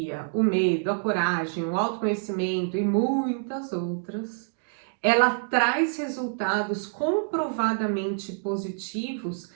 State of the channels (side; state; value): left; silent; digital silence